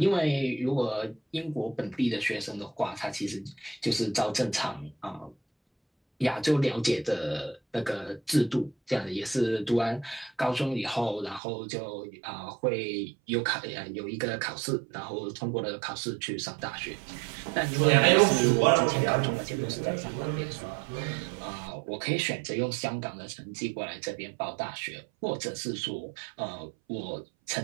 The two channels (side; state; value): left; drops out; at 11.4 s